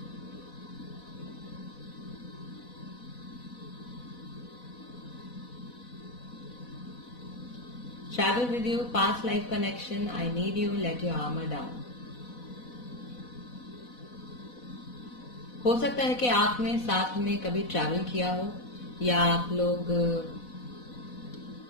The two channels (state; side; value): late; right; 4.1 ms